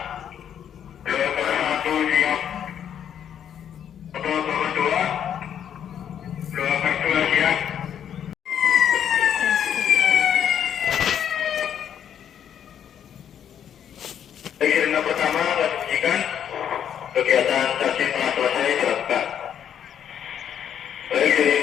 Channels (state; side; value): quieter; right; 9.1 dB